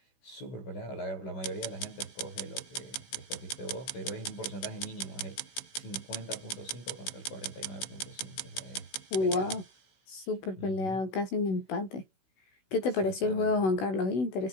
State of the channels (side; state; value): right; late; 16 ms